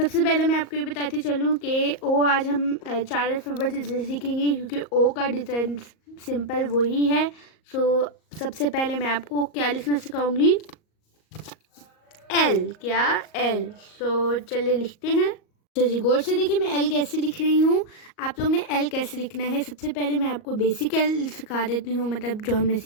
पहले मैं आपको ये बताती चलूँ कि ओ आज हम 4 अल्फ़ाबेट सीखेंगे क्योंकि ओ का डिज़ाइन सिंपल वही है। सबसे पहले मैं आपको क्या लिखना सिखाऊंगी, एल। क्या? एल। चलिए लिखते हैं। अच्छा जी, गौर से देखिए मैं एल कैसे लिख रही हूँ। आप लोग ने एल कैसे लिखना है, सबसे पहले मैं आपको बेसिक एल सिखा देती हूँ, मतलब जो हमने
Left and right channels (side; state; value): right; late; 38 ms